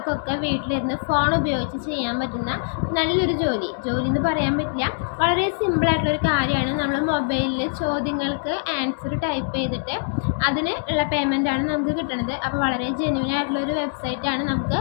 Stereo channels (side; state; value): right; silent; digital silence